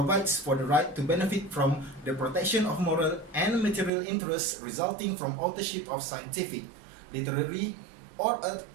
for the right to benefit from the protection of moral and material interests resulting from authorship of scientific, literary, or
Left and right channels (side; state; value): left; drops out; at 3.9 s